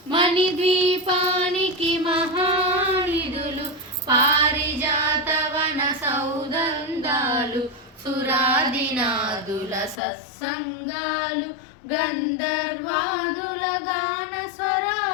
మణిద్వీపానికి మహానిధులు పారిజాతవన సౌదందాలు. సురాదినాదుల సత్సంగాలు గంధర్వాదుల గాన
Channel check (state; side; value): drops out; right; at 10.0 s